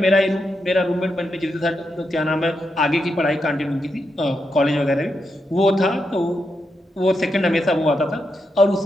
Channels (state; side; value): normal; both; correlation 0.84